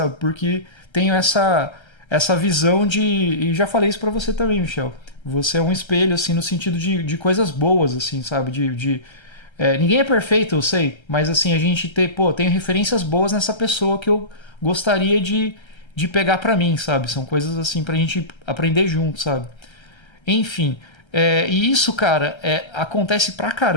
Porque tenho essa visão e já falei isso pra você também, Michel. Você é um espelho, assim, no sentido de coisas boas, assim, sabe? Ninguém é perfeito, eu sei, mas assim, a gente tem referências boas nessa pessoa que eu gostaria de pegar pra mim, sabe? São coisas assim pra gente aprender junto, sabe? Enfim, E isso, cara, acontece pra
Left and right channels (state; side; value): late; right; 1.3 ms